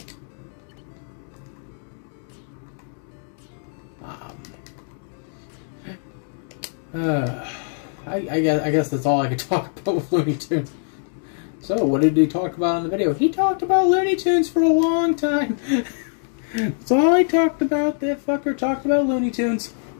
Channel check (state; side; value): silent; right; digital silence